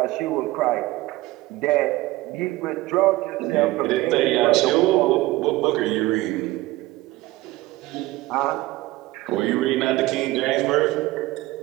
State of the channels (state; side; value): quieter; left; 18.7 dB